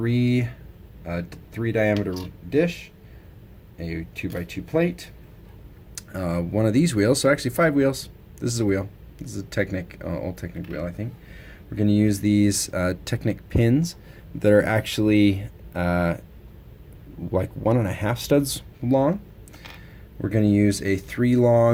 diameter dish, a 2x2 plate, one of these wheels, so actually 5 wheels. This is a wheel. This is a Technic, old Technic wheel, I think. We're going to use these Technic pins that are actually like 1.5 studs long. We're going to use a 3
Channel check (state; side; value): identical; both; correlation 1.00